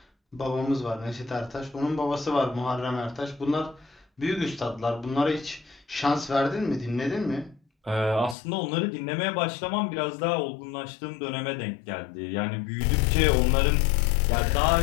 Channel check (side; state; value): right; drops out; at 8.3 s